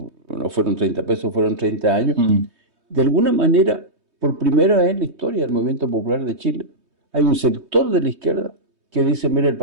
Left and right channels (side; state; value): left; late; 3.2 ms